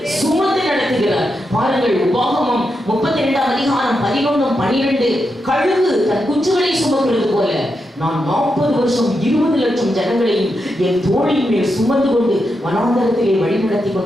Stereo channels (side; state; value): both; normal; correlation 0.85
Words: சுமந்து நடத்துகிறார். பாருங்கள், உபாகமம் 32ஆம் அதிகாரம் 11-12 கழுகு தன் குஞ்சுகளை சுமக்கிறது போல நான் 40 வருஷம் 20 லட்சம் ஜனங்களையும் என் தோளின் மேல் சுமந்து கொண்டு வனாந்தரத்திலே வழிநடத்தி